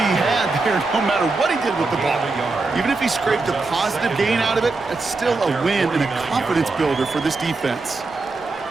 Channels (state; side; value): quieter; left; 3.6 dB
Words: had there, no matter what he did with the ball. Even if he scraped a positive gain out of it, that's still a win and a confidence builder for this defense.